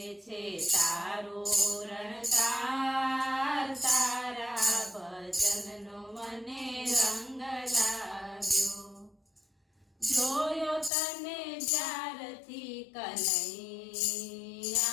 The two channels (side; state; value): right; drops out; at 10.9 s